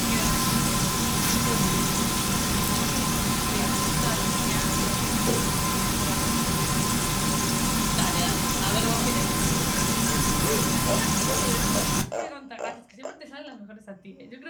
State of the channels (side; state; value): both; identical; correlation 1.00